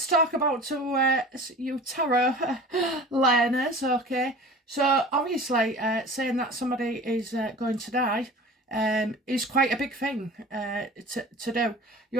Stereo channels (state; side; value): normal; both; correlation 0.39